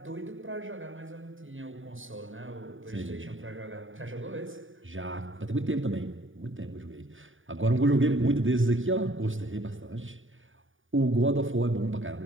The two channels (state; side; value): late; left; 0.57 ms